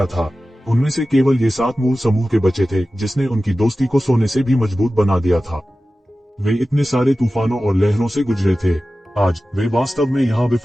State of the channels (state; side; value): normal; both; correlation 0.95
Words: था। उनमें से केवल ये 7 मूल समूह के बचे थे जिसने उनकी दोस्ती को सोने से भी मजबूत बना दिया था। वे इतने सारे तूफानों और लहरों से गुजरे थे। आज वे वास्तव में यहाँ